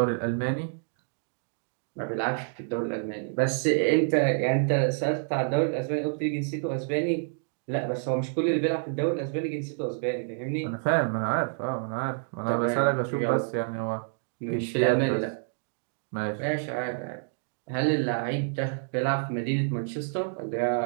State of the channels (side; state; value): left; silent; digital silence